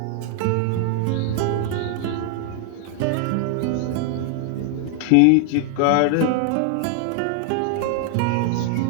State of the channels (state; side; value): different; both; correlation 0.00